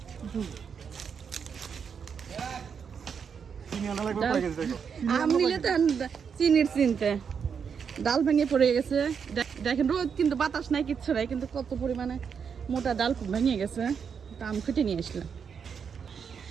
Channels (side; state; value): left; quieter; 6.7 dB